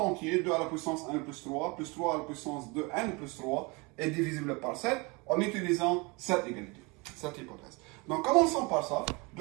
2 à la puissance n plus 3 à la puissance de n plus 3 est divisible par 7 en utilisant cette égalité, cette hypothèse. Donc commençons par ça.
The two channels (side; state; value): left; quieter; 27.6 dB